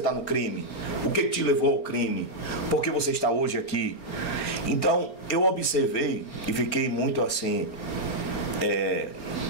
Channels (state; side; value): late; right; 4.3 ms